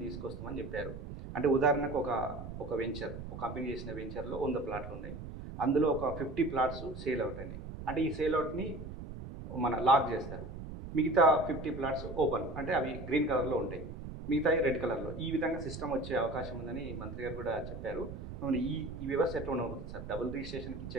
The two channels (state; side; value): noise; right; rumble, 9 dB below the sound